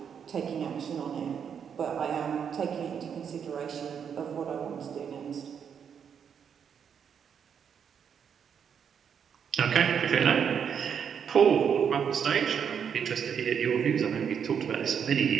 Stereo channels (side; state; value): left; quieter; 7.6 dB